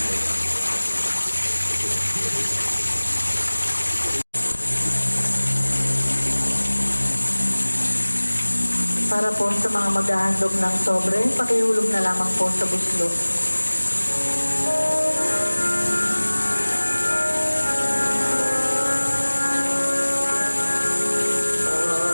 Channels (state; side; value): inverted; both; correlation -1.00